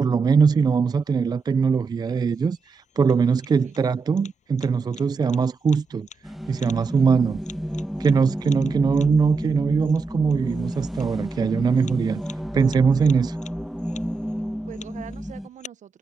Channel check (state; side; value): quieter; left; 4.8 dB